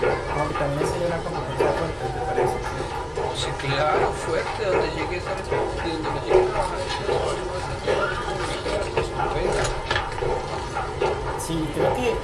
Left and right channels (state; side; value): identical; both; correlation 1.00